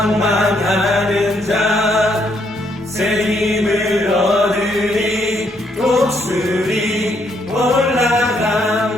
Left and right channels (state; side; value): normal; both; correlation 0.72